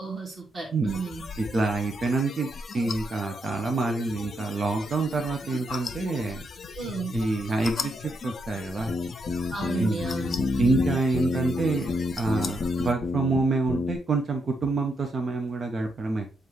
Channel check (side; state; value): both; normal; correlation 0.80